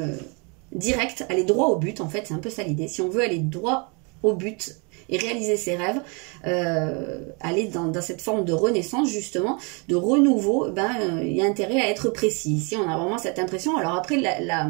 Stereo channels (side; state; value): left; quieter; 33.2 dB